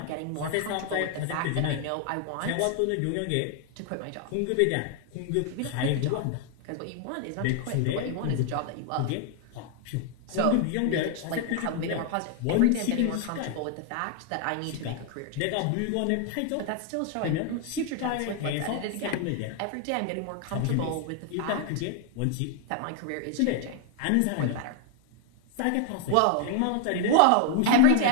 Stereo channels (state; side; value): different; both; correlation 0.00